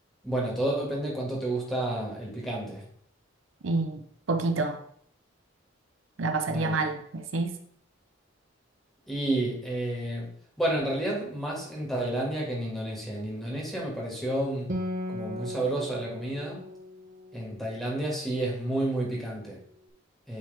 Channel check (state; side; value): normal; both; correlation 0.60